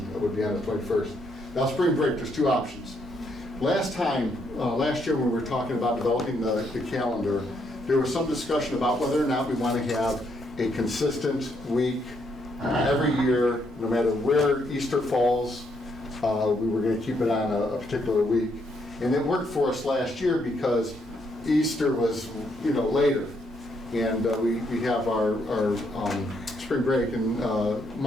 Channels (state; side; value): normal; both; correlation 0.74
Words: It would be on the 21st. Now, spring break, there's 2 options. Last year when we were talking about developing the calendar, there was some discussion about whether or not we want to have a consistent week every year, no matter where Easter falls. We were going to keep it on a particular week. And it worked for us last year because Easter was, later. And we have our spring break in